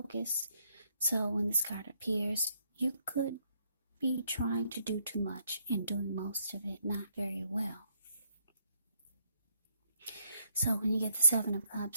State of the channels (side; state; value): both; inverted; correlation -0.71